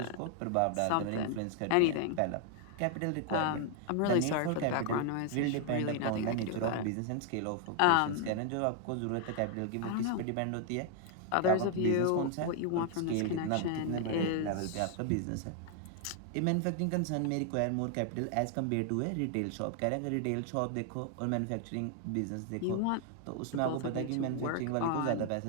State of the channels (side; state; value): both; different; correlation 0.00